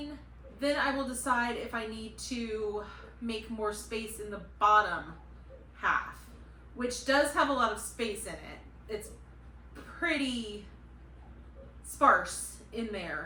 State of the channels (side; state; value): both; identical; correlation 1.00